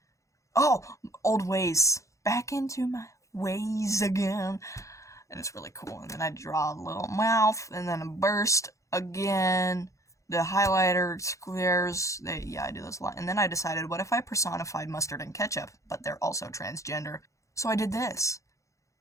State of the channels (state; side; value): late; right; 0.15 ms